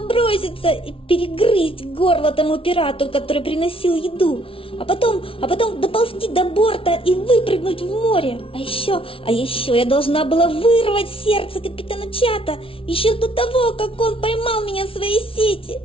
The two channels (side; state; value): right; late; 0.26 ms